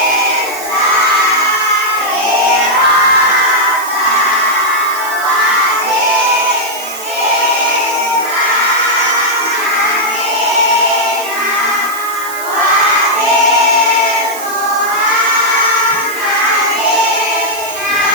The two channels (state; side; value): noise; right; hiss, 12 dB below the sound